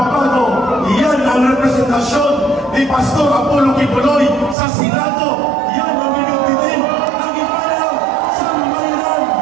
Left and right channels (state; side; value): drops out; left; at 4.5 s